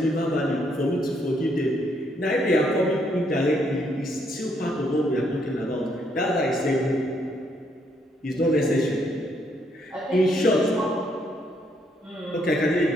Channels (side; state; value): both; normal; correlation 0.72